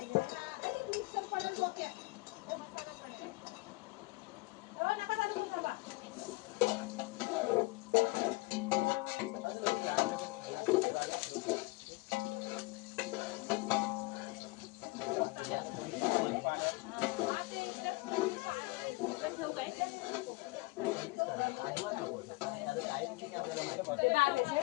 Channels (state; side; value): quieter; right; 23.5 dB